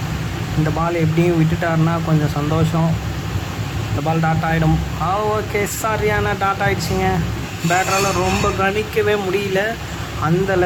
இந்த பால் எப்படியும் விட்டுட்டாருன்னா கொஞ்சம் சந்தோஷம். இந்த பால் டாட் ஆகிடும். ஓகே, சரியான டாட் ஆகிடுச்சிங்க. பேட்டரால் ரொம்ப கணிக்கவே முடியல. அந்த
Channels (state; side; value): identical; both; correlation 1.00